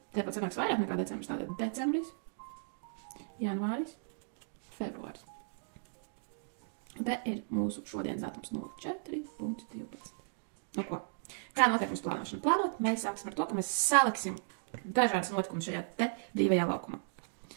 Tāpat sanāks vairāk nekā decembris. Tātad decembris, janvāris, februāris. Te ir mūsu šodienas datums 04.12. Nu ko? Kā notiek mūsu plānošana? Plānot, mēs sāksim ar to, ka mēs saliksim dažādas notikumus šajā te brīvajā laukumā.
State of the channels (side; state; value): left; silent; digital silence